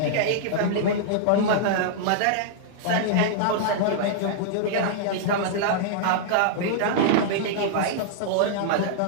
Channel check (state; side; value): different; both; correlation -0.01